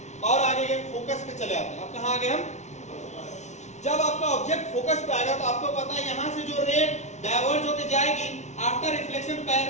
और आगे गए, फोकस पे चले आते हैं। अब कहां आ गए हम, जब आपका ऑब्जेक्ट फोकस पे आएगा तो आपको पता है यहां से जो रे डाइवर्ज होके जाएगी आफ्टर रिफ्लेक्शन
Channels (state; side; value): late; right; 0.33 ms